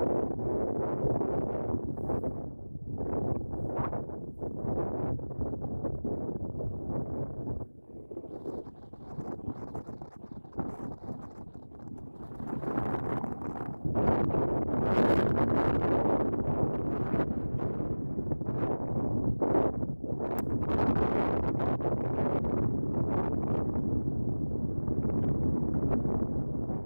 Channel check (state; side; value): inverted; both; correlation -1.00